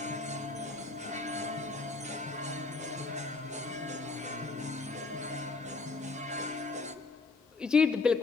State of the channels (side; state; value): right; quieter; 3.8 dB